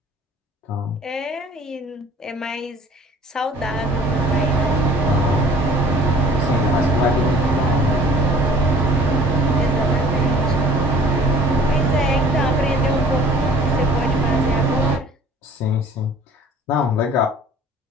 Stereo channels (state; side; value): normal; both; correlation 0.50